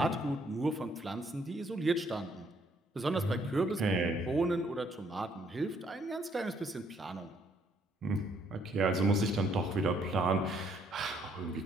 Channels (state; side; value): normal; both; correlation 0.68